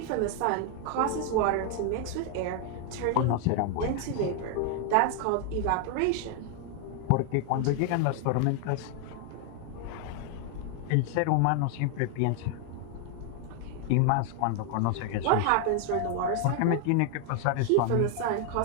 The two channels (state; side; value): different; both; correlation 0.00